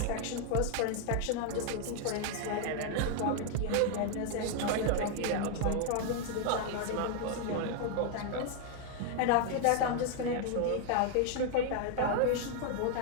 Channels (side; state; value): both; different; correlation 0.00